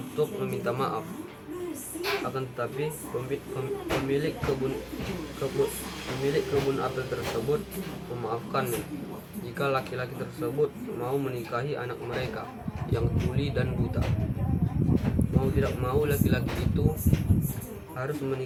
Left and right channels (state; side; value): identical; both; correlation 1.00